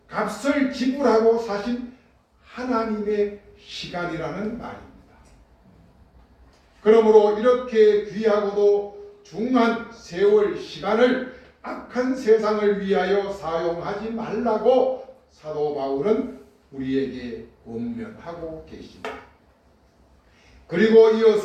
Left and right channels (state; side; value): identical; both; correlation 1.00